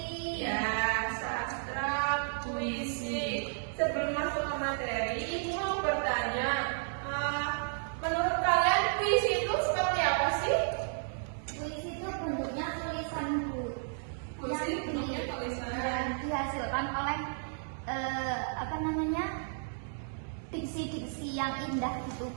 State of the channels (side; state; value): left; silent; digital silence